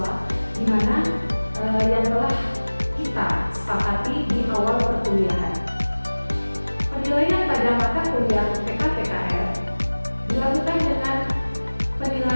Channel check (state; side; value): inverted; both; correlation -1.00